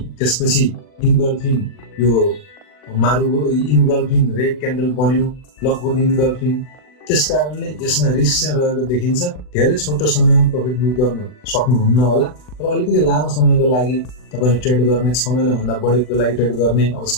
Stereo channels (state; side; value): late; right; 40 ms